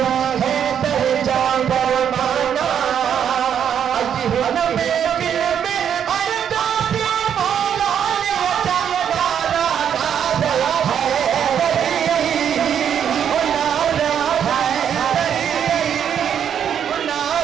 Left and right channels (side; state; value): left; quieter; 8.6 dB